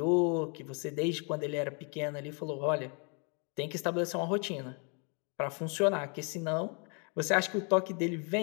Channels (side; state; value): right; quieter; 36.5 dB